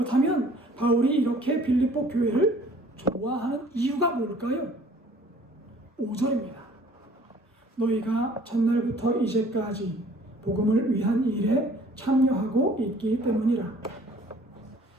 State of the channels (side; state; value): both; normal; correlation 0.54